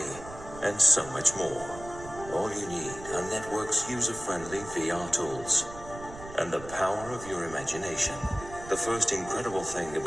and so much more. All you need are Network's user-friendly VR tools and the power of your imagination. The first incredible thing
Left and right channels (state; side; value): noise; right; rumble, 14 dB below the sound